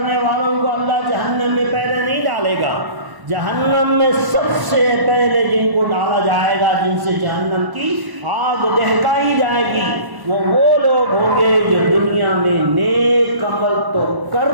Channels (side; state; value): left; late; 1.1 ms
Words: والوں کو اللہ جہنم میں پہلے نہیں ڈالے گا۔ جہنم میں سب سے پہلے جن کو ڈالا جائے گا، جن سے جہنم کی آگ دہکائی جائے گی، وہ لوگ ہوں گے جو دنیا میں نیک عمل تو